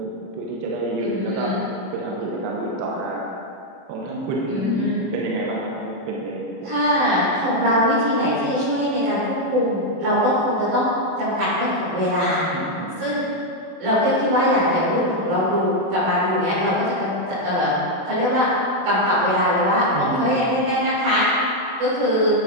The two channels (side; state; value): left; late; 32 ms